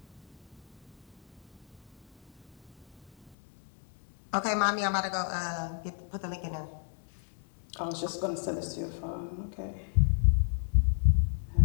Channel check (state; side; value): drops out; right; at 3.4 s